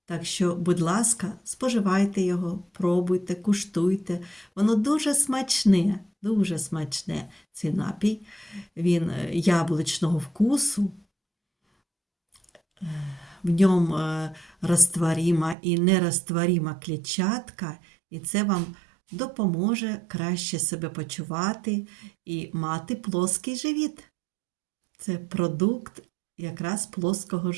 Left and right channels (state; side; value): drops out; left; at 15.6 s